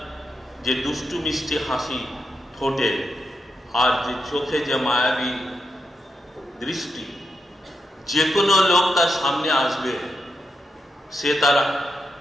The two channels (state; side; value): normal; both; correlation 0.84